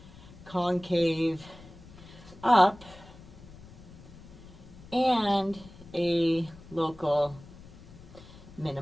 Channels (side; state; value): left; noise; rumble, 19 dB below the sound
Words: concave up and a local